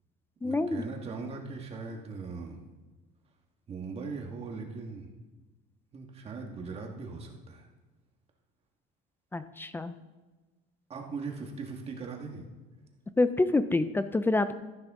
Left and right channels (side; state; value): both; normal; correlation 0.83